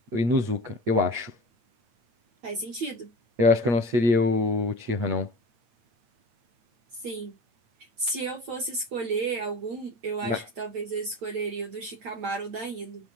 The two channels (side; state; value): left; late; 8.8 ms